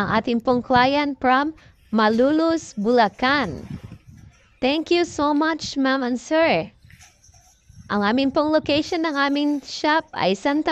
ating pong client from Malulus, Bulacan. Thank you so much ma'am and sir. Ang aming pong location ng aming shop ay Santa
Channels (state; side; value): identical; both; correlation 1.00